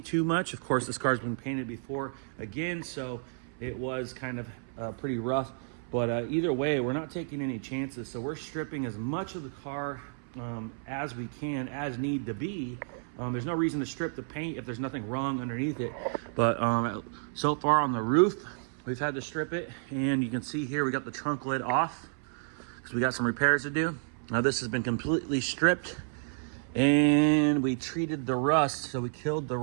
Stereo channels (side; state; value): left; silent; 57 dB below the other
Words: too much. Of course, this car's been painted before again, so it was kind of pretty rough. But either way, we're not taking any chances. So we're stripping as much of the car as we can, as need to be. There's no reason to strip the paint if there's nothing wrong underneath it. But so far on the roof, we've had to strip it. And you can see here, we got the trunk lid off because we got some repairs to do. Now this has been completely stripped, and we treated the rust, so we killed the